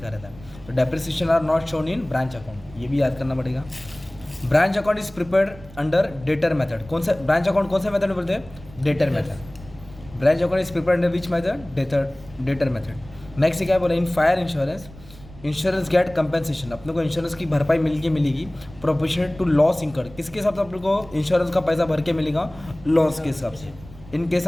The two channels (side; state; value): right; noise; rumble, 19 dB below the sound